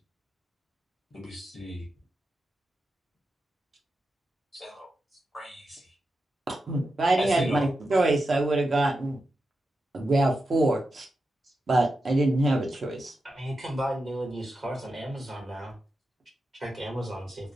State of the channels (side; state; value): both; normal; correlation 0.89